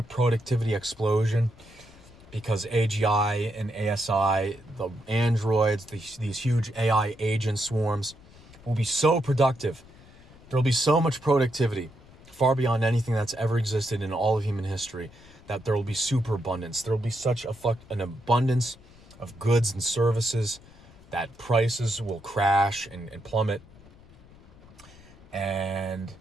productivity explosion because AGI and ASI, the androids, these huge AI agent swarms will be so productive. There'll be so much productivity, far beyond anything that's ever existed in all of human history, that there will be superabundance. There will be such an abundance of goods and services that prices will crash and plummet. And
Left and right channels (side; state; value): left; noise; rumble, 23 dB below the sound